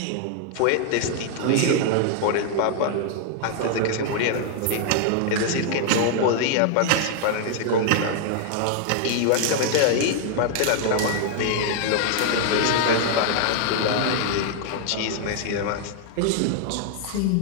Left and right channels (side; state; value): both; different; correlation 0.00